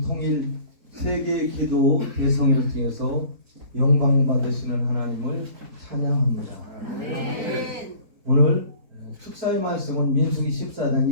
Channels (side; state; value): left; late; 4.2 ms